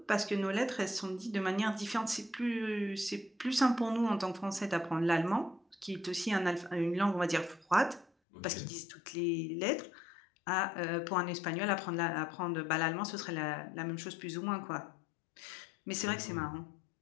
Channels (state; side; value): drops out; right; at 8.1 s